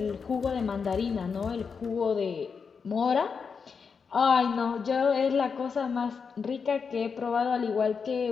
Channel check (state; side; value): quieter; right; 5.7 dB